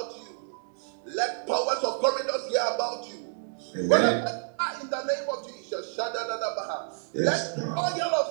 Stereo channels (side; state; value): left; silent; 59 dB below the other